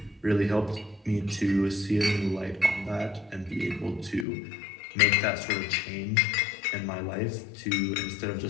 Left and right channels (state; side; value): drops out; right; at 4.2 s